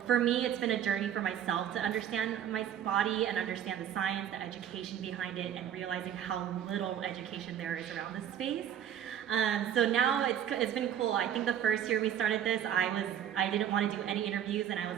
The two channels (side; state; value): left; quieter; 9.9 dB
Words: for me, it's been a journey for myself to understand my body and understand the science, the education behind it, and realizing how little education there is around this space. So now it's been cool. I think the first year we started this, I didn't want to do any interviews, and I